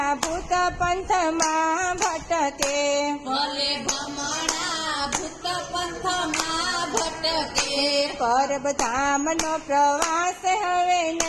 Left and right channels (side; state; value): both; identical; correlation 1.00